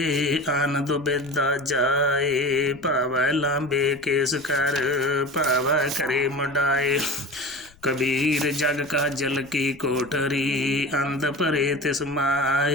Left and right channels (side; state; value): left; noise; rumble, 28 dB below the sound